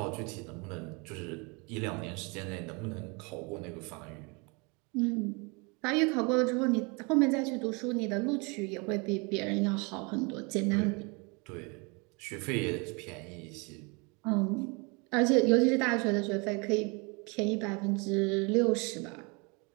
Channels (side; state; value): left; quieter; 30.4 dB